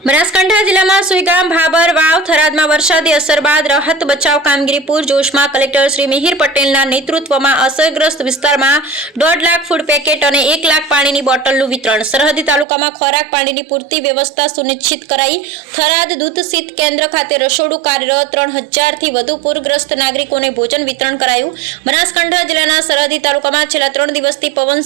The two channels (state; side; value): drops out; left; at 12.7 s